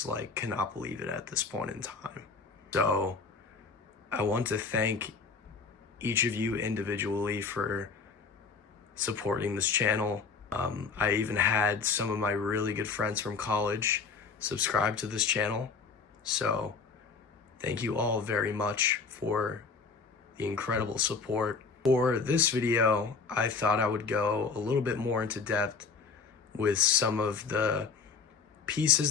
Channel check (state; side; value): quieter; right; 5.0 dB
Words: cannot believe it at this point in time. So I want to thank each of you individually for supporting this channel. I even had some of my really good friends from college subscribe to this channel. So thank you all very much for the incredible support. For this video, I thought I would go a little bit more into depth with some of the